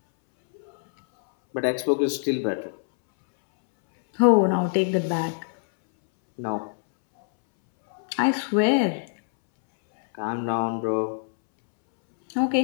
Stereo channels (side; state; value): right; silent; 63 dB below the other